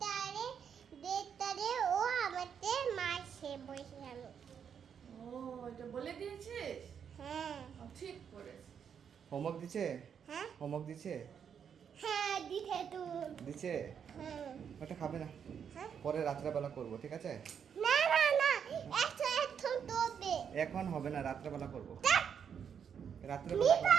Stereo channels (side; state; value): left; quieter; 7.6 dB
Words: ডেটারে ও আমাদের মারছে বলছে আমি। ও, এটা বলে দিয়েছিস? হ্যাঁ ঠিক করেছিস। হোমওয়ার্ক দিছে? হ্যাঁ হোমওয়ার্ক দিছে? হ্যাঁ দিতে তো দিছে? হ্যাঁ ওটা খাবে না, হ্যাঁ পরে রাত্রেবেলা করবো, ঠিক আছে? না এখন তোবে এখন হবে না, রাত্রেবেলা করবো। রাত্রেবেলা মিতা